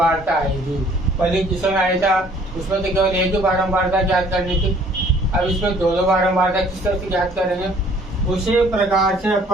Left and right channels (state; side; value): normal; both; correlation 0.57